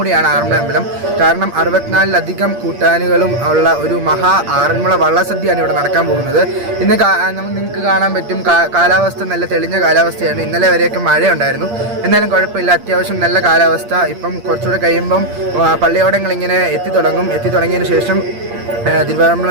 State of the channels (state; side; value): late; left; 8.6 ms